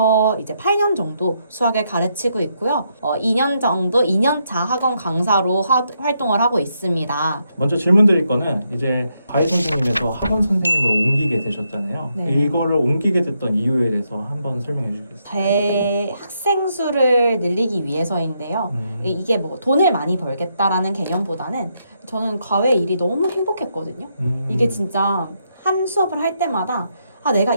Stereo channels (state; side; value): inverted; both; correlation -0.78